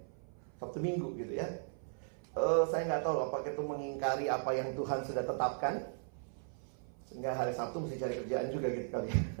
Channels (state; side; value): silent; left; 53 dB below the other